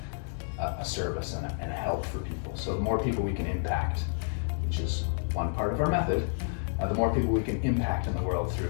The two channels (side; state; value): right; silent; digital silence